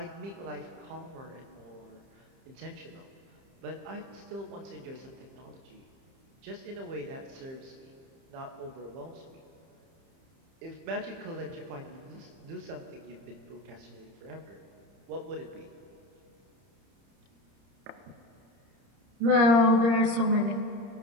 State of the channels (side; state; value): left; late; 30 ms